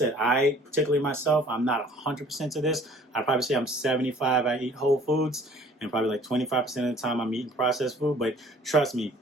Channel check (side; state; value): both; normal; correlation 0.53